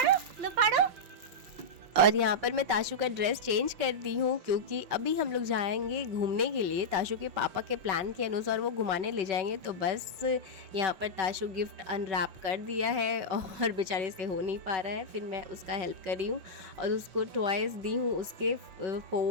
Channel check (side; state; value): left; late; 5.7 ms